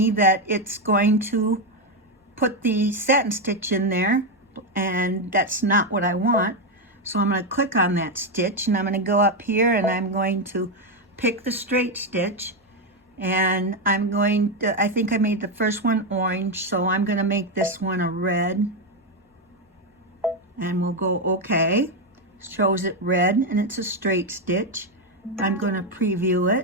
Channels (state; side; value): normal; both; correlation 0.07